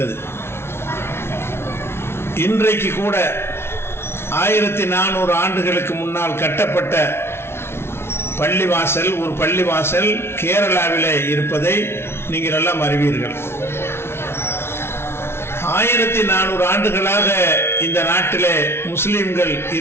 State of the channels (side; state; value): right; late; 0.12 ms